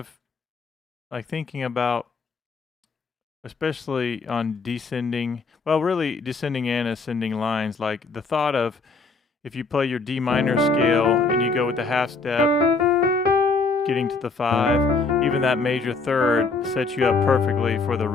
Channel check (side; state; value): right; quieter; 4.1 dB